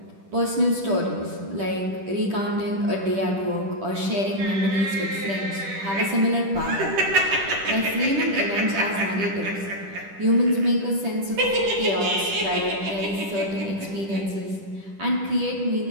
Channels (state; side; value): late; left; 10 ms